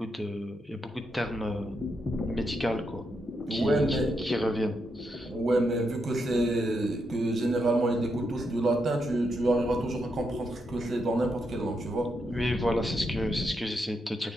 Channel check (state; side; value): normal; both; correlation 0.82